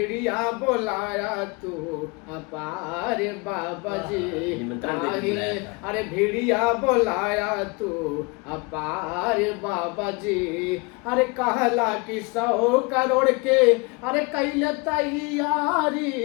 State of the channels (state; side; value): quieter; right; 28.8 dB